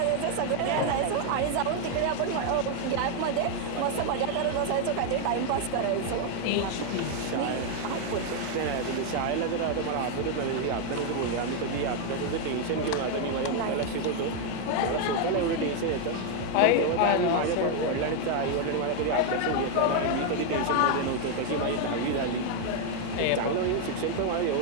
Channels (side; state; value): both; different; correlation 0.00